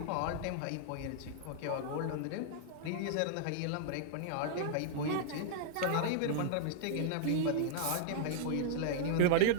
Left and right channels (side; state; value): both; different; correlation -0.01